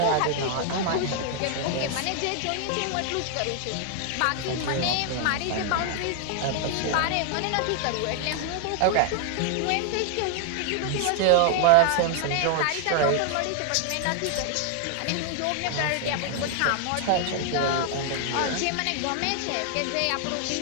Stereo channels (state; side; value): different; both; correlation 0.00